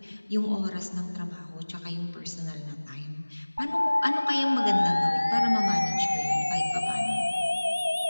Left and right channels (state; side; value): inverted; both; correlation -1.00